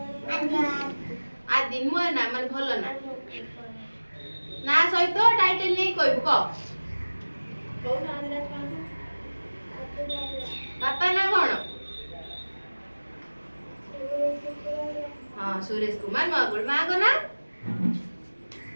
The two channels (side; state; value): both; inverted; correlation -1.00